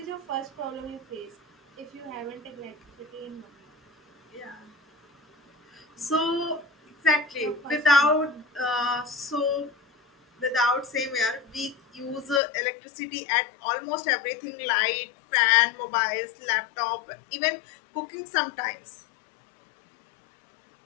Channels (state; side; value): drops out; right; at 12.4 s